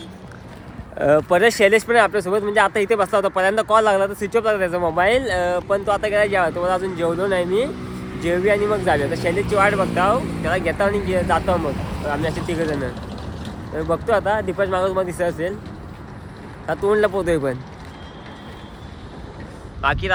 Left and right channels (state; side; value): identical; both; correlation 1.00